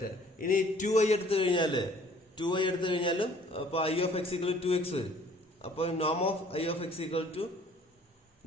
ഇനി 2i എടുത്തു കഴിഞ്ഞാലും അപ്പൊ I of X equal to X വരും. അപ്പൊ നോം of I of X equal to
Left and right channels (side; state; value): both; normal; correlation 0.55